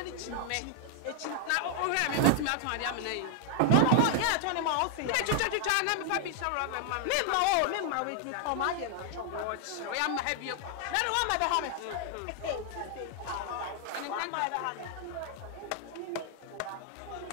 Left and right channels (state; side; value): different; both; correlation 0.00